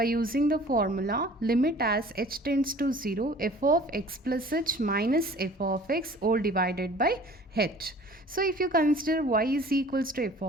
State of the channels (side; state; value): both; normal; correlation 0.48